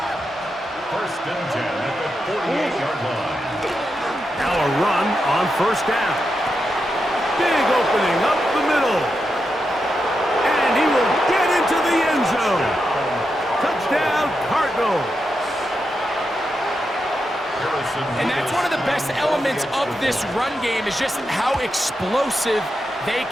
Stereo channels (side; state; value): both; normal; correlation 0.86